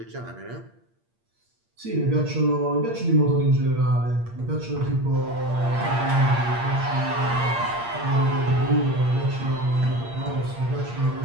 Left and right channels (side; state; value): left; late; 8.6 ms